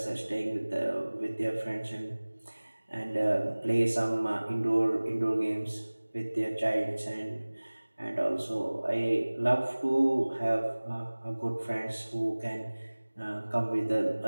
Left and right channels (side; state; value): both; inverted; correlation -1.00